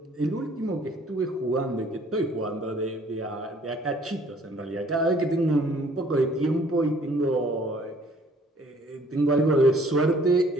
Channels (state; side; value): normal; both; correlation 0.58